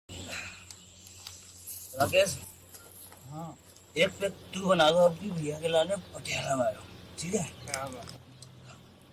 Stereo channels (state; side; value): identical; both; correlation 1.00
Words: राकेश, हाँ एक पैक तू बना दो अपनी भैया के लाने पटियाला मारो, ठीक है?